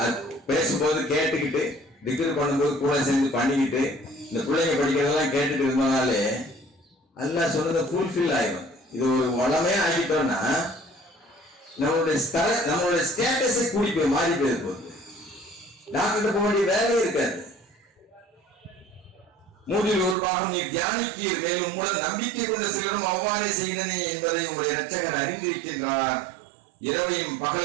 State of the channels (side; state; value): left; drops out; at 20.2 s